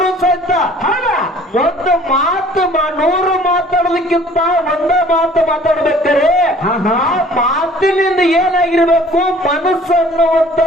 ಸಹಿತ ಒಂದು ಮಾತು 100 ಮಾತಾಡೋದಕ್ಕಿಂತ ಒಂದೇ ಮಾತು ಮಾತಾಡ್ಬೇಕಾರೆ ಆ ಮಾತಿನಿಂದ ಏನಾಗಿರ್ಬೇಕು? ಮನಸ್ಸು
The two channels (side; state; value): both; normal; correlation 0.52